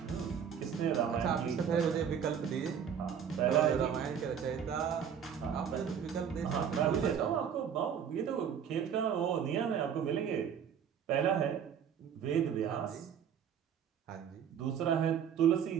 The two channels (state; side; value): quieter; left; 8.0 dB